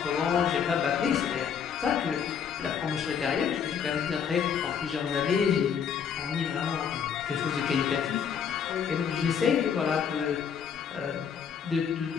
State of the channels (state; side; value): quieter; right; 7.4 dB